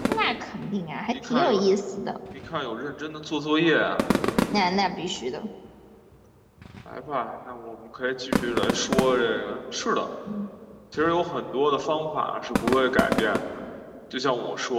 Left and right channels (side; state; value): both; identical; correlation 1.00